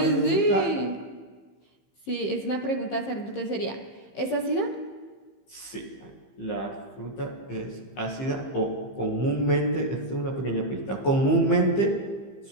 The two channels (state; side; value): late; right; 15 ms